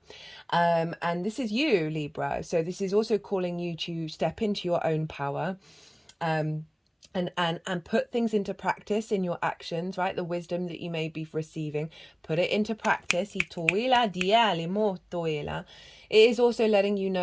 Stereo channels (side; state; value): both; identical; correlation 1.00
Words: this is you, Libra. So this is also calling you to step into your own power, and put things into practice in your actions, right? The wisdom that you may be receiving, put it into practice. it is also letting you